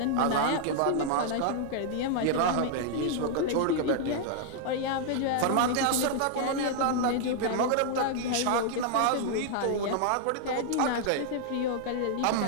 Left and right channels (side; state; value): both; different; correlation -0.01